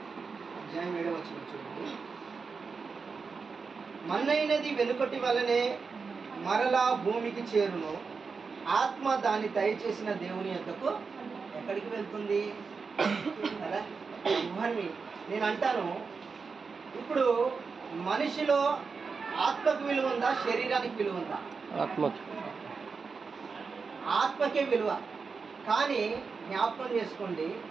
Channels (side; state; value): left; quieter; 5.0 dB